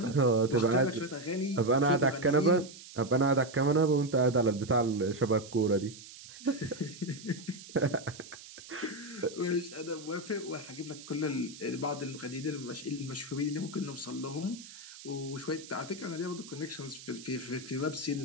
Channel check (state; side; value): noise; right; hiss, 16 dB below the sound